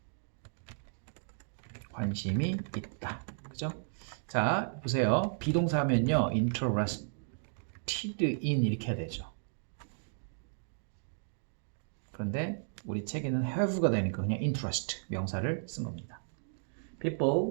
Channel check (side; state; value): left; silent; digital silence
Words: 관심이 있다. 그죠? 자, 보세요. 비동사 하면요, interested in 이렇게 해야 되죠. 그런데 우리 책에는 have가 되니까 그냥 interest 명사를 쓴 겁니다.